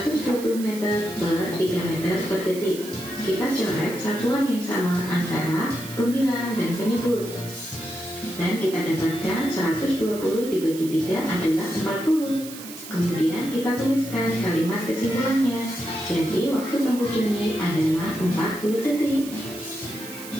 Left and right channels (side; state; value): right; noise; hiss, 13 dB below the sound